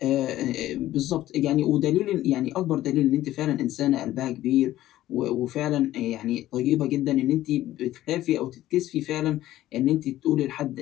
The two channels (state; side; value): quieter; right; 14.5 dB